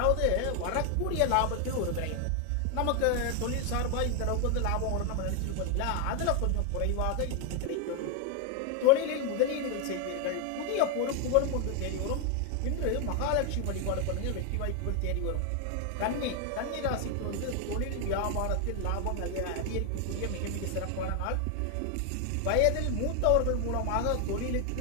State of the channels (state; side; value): different; both; correlation 0.01